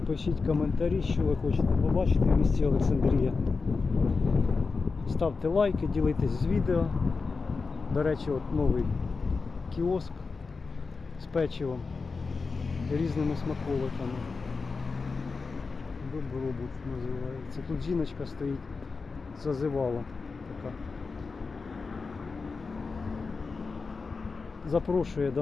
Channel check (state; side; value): quieter; right; 4.4 dB